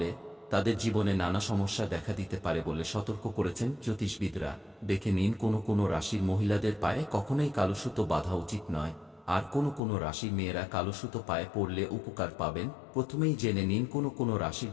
তাদের জীবনে নানা সমস্যা দেখা দিতে পারে বলে সতর্ক করেছেন জ্যোতিষবিদরা। দেখে নিন কোন কোন রাশির মহিলাদের পায়ে কখনোই কালো সুতো বাঁধা উচিত নয়, আর কোন কোন রাশির মেয়েরা কালো সুতো পায়ে পরলে উপকার পাবেন। প্রথমেই জেনে নিন কোন কোন রাশির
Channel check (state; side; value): drops out; right; at 9.8 s